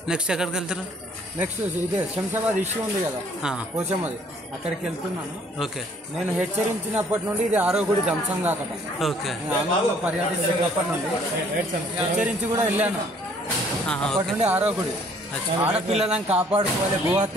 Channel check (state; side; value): normal; both; correlation 0.60